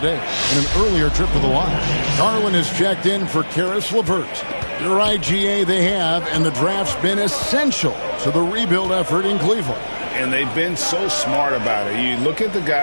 in an earlier trip to the line. Garland has checked in for Caris LeVert. You're right, GA, they have, and the draft's been essential to the rebuild effort in Cleveland. And they've been so smart about it. You look at the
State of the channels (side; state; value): both; inverted; correlation -1.00